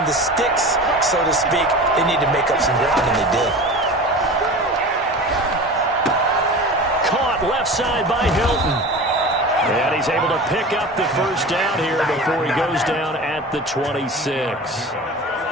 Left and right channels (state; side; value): normal; both; correlation 0.34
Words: the sticks, so to speak. They needed to make up some ground, and they did. Left side by Hilton. And he's able to pick up the 1st down here before he goes down at the 26.